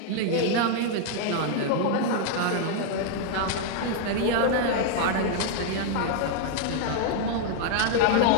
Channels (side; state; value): both; different; correlation 0.00